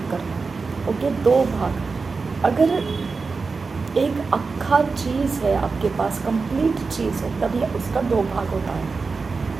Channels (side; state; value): left; quieter; 4.4 dB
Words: करना। ओके, दो भाग। अगर एक अक्खा चीज़ है आपके पास, कंप्लीट चीज़ है, तभी उसका दो भाग होता है।